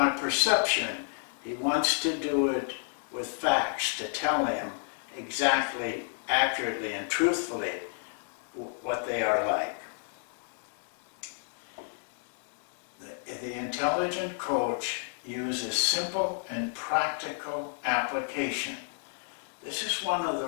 perception. He wants to do it with facts to tell him exactly, accurately, and truthfully what they are like. The intelligent coach uses simple and practical application. This is one of the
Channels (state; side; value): silent; right; 55 dB below the other